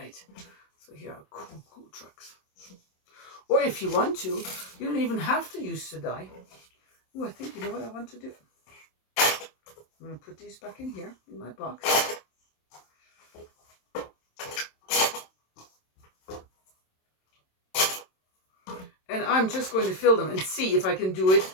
So here are cool trucks. Or if you want to, you don't even have to use the die. Oh, I think you know what I want to do. I'm going to put these back in here in my box. And I'm just going to fill them and see if I can do it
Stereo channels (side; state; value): right; late; 27 ms